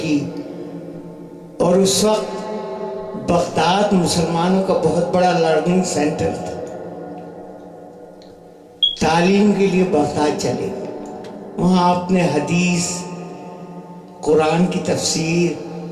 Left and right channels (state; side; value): identical; both; correlation 1.00